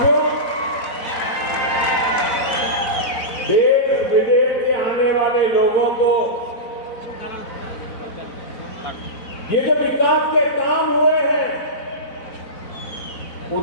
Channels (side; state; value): right; late; 4.0 ms